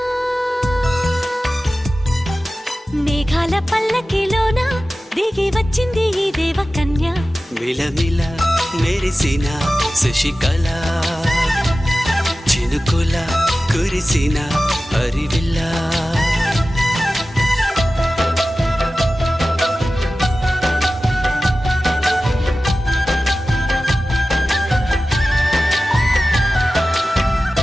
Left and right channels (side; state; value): both; normal; correlation 0.95